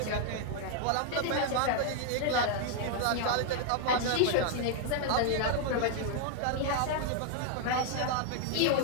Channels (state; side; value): different; both; correlation 0.00